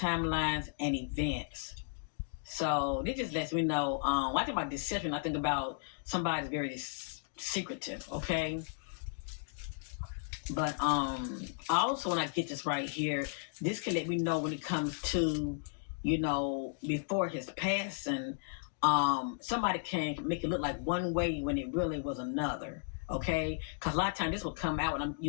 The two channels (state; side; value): silent; right; digital silence